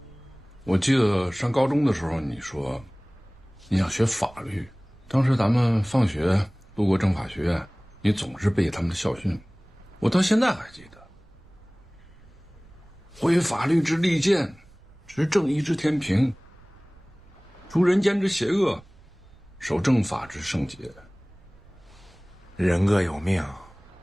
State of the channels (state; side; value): noise; right; rumble, 25 dB below the sound